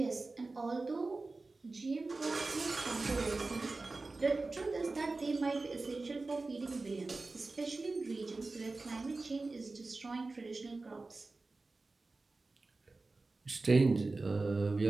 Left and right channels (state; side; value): quieter; left; 3.5 dB